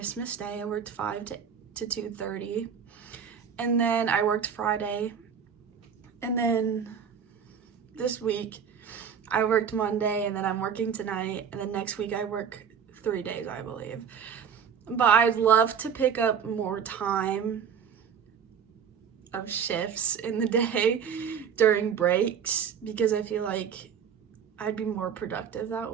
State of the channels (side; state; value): left; quieter; 7.4 dB